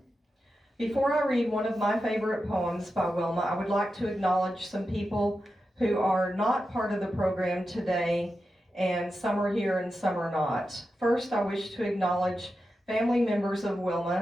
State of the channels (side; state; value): both; normal; correlation 0.90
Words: Before I read one of my favorite poems by Wilma, I would like to acknowledge some people who are not part of the program today, and some are here and some are not. First, I wish to acknowledge family members of